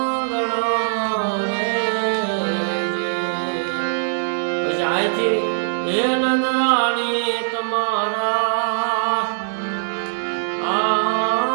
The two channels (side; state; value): left; silent; digital silence